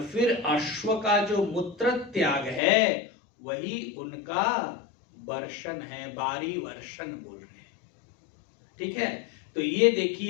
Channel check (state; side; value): drops out; right; at 2.6 s